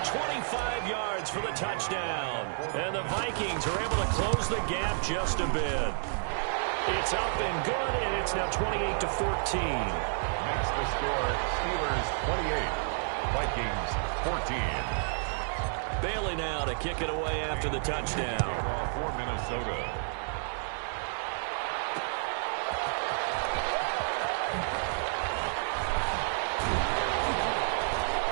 25 yards for the touchdown. And the Vikings are able to close the gap just a bit. It's up and good, and it's now 28-14. Makes the score Steelers 28, Vikings 14. Bailey now to kick it away after the touchdown. For Minnesota.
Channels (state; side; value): silent; left; digital silence